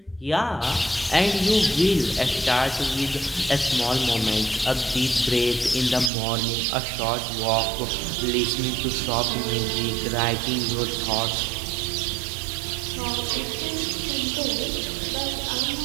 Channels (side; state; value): left; drops out; at 6.1 s